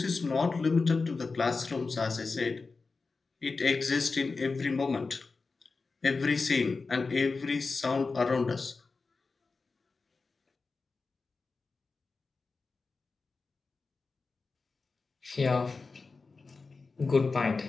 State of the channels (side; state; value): right; quieter; 4.2 dB